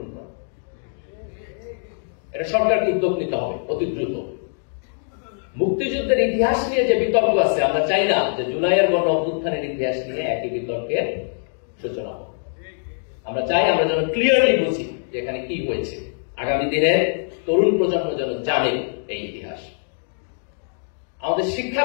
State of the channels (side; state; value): right; silent; digital silence